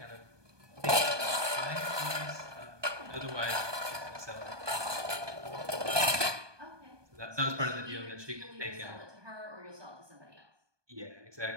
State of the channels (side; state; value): left; late; 1.2 ms